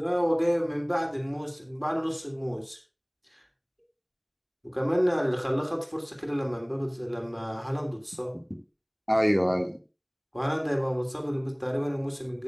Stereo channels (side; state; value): both; identical; correlation 1.00